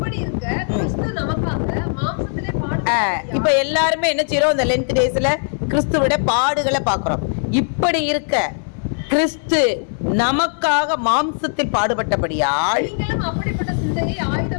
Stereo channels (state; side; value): silent; right; 58 dB below the other